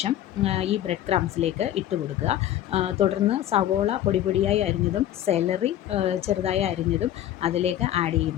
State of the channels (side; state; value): right; quieter; 12.2 dB